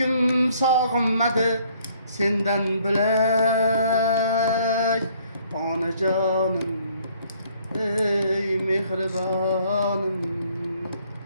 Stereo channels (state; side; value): inverted; both; correlation -0.63